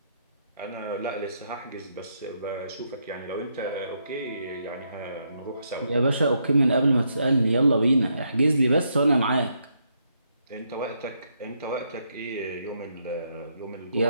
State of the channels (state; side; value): inverted; both; correlation -0.77